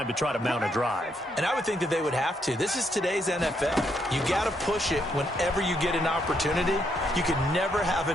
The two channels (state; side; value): normal; both; correlation 0.76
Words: to try to mount a drive. And I would think that they would have to. This is today's NFL. You got to push it whenever you get an opportunity. You can never have